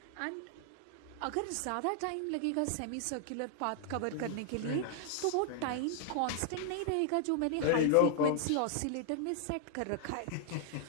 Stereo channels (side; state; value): both; different; correlation 0.00